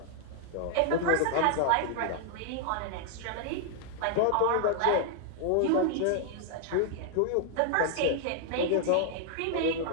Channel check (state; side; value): different; both; correlation 0.00